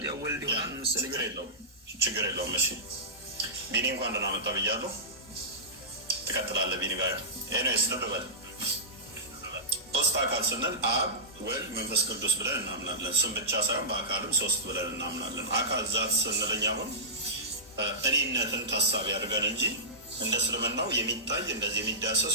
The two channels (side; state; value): both; normal; correlation -0.18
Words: ያው ወልድ ይሆናል መሰለኝ። ችግር የለውም። እሺ ቢኒ እንኳን ደህና መጣ ብያለሁ። ትቀጥላለህ ቢኒ ጋር። ኤኒዌይስ ልብ በል ሶስት አካል ስንል አብ፣ ወልድ፣ መንፈስ ቅዱስ ብለን እናምናለን። ስም ብቻ ሳይሆን በአካልም ሶስት ብለን እናምናለን። አካል ዛት ስንለኝ አሁን እኔነትን ታሳቢ አድርገን እንጂ እንደ እስልምናው የሚታይ እንደዚህ የሚዳሰስ